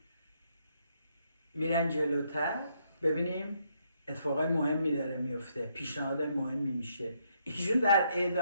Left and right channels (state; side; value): inverted; both; correlation -0.74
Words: میرن جلوتر ببینیم اتفاقای مهمی داره میفته، پیشنهادهای مهمی میشه. ایشون در